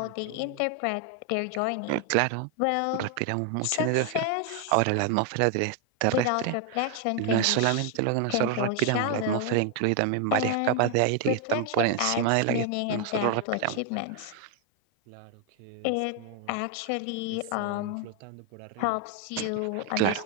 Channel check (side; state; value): both; different; correlation 0.00